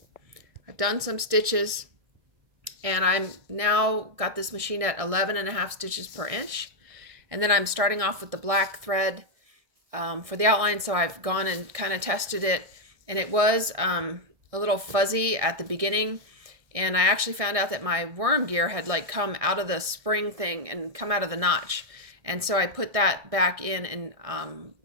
done some stitches, and I'm now got this machine at 11.5 stitches per inch. And then I'm starting off with the black thread for the outline, so I've gone and kind of tested it. And it was a little fuzzy at the beginning, and I actually found out that my worm gear had like come out of the spring thing and come out of the notch, and so I put that back in, and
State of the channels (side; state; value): left; late; 1.6 ms